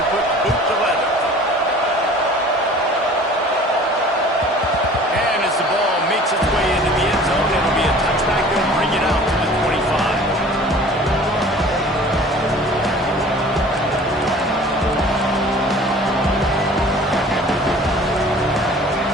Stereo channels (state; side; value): normal; both; correlation 0.46